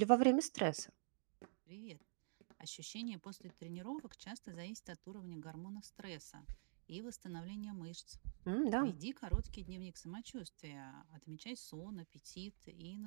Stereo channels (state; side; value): silent; left; digital silence